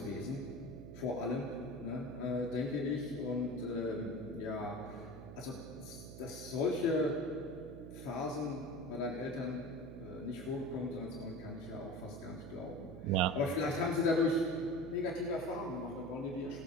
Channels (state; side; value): noise; right; hum, 11 dB below the sound